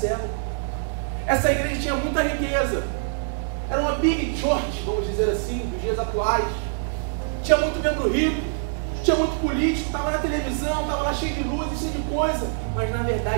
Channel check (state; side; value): silent; left; 58 dB below the other